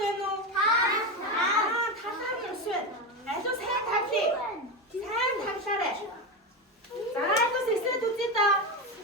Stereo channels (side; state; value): both; normal; correlation 0.17